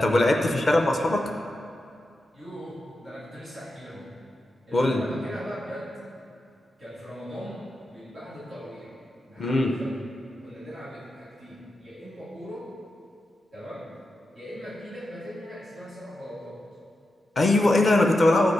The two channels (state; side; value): normal; both; correlation 0.89